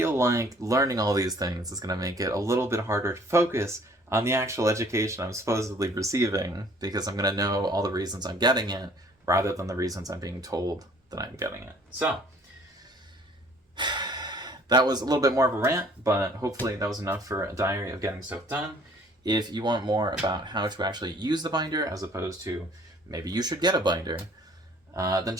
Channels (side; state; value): both; normal; correlation 0.56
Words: like learning all these things is going to make it a little bit harder to focus on the actual education I'm supposedly receiving, because I'm going to know all the reasons I'm getting it, rather than the reasons I'm being told that I'm getting it. So, that was a little bit more of a rant, but hopefully that was enough for a diary of getting stuff done. If you want more about how to actually use the binder, as opposed to maybe you should get a binder, then